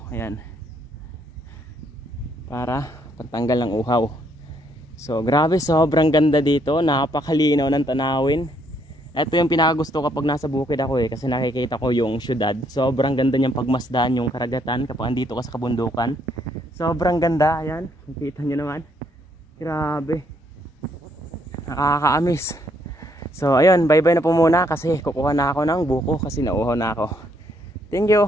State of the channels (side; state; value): both; normal; correlation 0.71